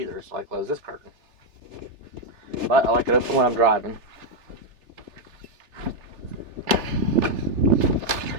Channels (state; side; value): late; left; 3.4 ms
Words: so I close this curtain. But I like it open when I'm driving.